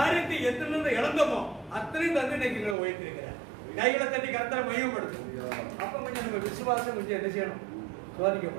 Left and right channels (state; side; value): drops out; left; at 2.8 s